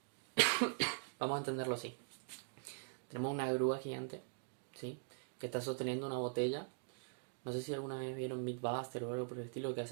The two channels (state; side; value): silent; left; digital silence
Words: Vamos a entenderlo así. Tenemos una grúa gigante, ¿sí?, que está sosteniendo una botella. No sé si alguna vez vieron Mythbuster o algo por el estilo, que